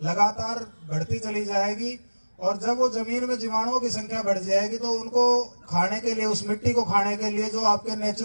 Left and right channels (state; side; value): inverted; both; correlation -1.00